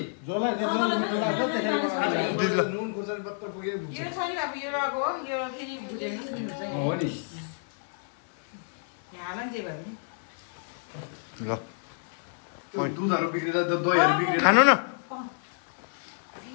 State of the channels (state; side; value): silent; right; 59 dB below the other